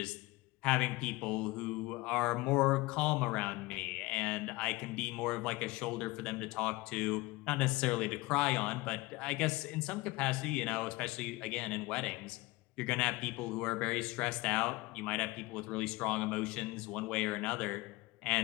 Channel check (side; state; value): right; quieter; 21.3 dB